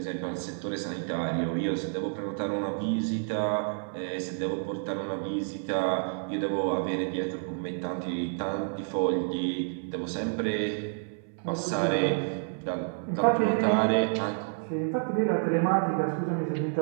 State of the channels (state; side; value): silent; left; 58 dB below the other